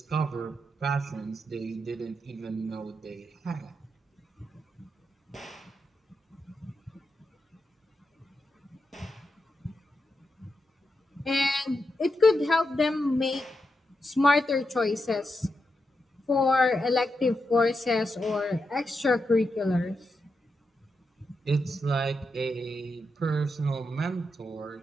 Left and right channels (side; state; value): both; normal; correlation 0.86